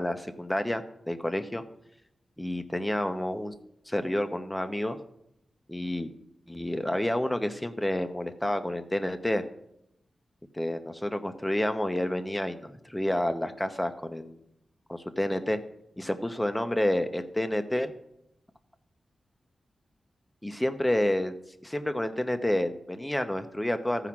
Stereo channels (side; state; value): both; normal; correlation 0.98